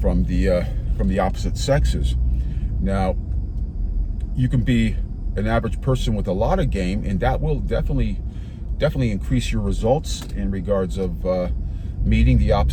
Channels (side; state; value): both; identical; correlation 1.00